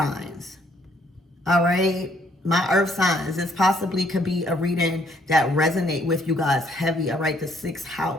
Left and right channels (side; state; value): both; normal; correlation 0.66